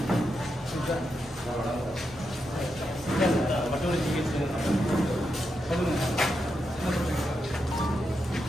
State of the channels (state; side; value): normal; both; correlation 0.85